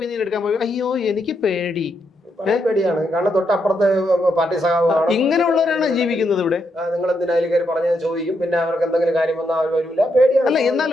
എടുക്കാൻ പോയി, അയ്യോ എനിക്ക് പേടി, പേടിയാണ്. കാരണം തൊട്ടപ്പുറത്ത് പാർട്ടി സഖാവാണ്, ഇങ്ങനെയുള്ളവരാണ് ജീവിക്കുന്നത് ഇവിടെ. നിങ്ങൾ എന്തിനായാലും കയറി പറഞ്ഞത് ചോദിക്കും, പിന്നെ അവർക്ക് എന്തെങ്കിലും കാര്യം വന്നാൽ അവർ വരില്ല, പേടിയാണ്. അല്ല,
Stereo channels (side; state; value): both; normal; correlation 0.80